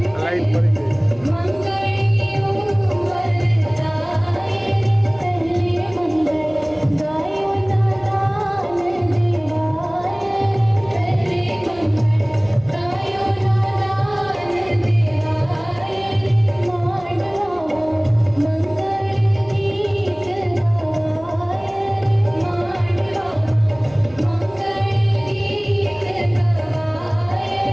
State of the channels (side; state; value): right; noise; hum, 23 dB below the sound